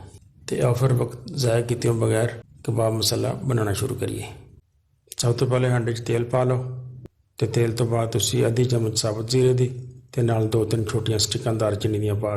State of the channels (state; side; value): identical; both; correlation 1.00